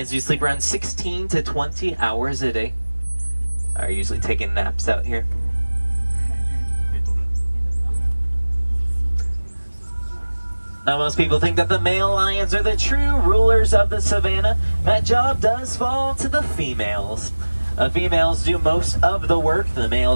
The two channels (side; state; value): both; inverted; correlation -1.00